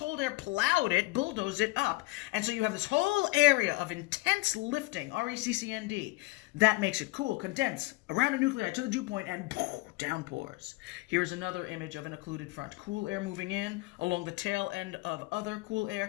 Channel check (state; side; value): quieter; right; 22.2 dB